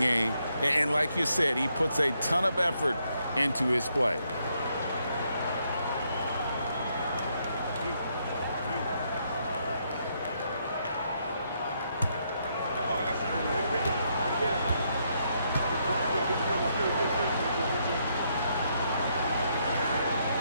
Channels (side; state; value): both; inverted; correlation -0.76